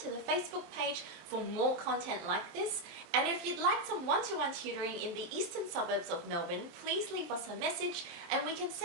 to the Facebook page for more content like this. And if you'd like some one-to-one tutoring in the eastern suburbs of Melbourne, please leave us a message and we can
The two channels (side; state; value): left; late; 23 ms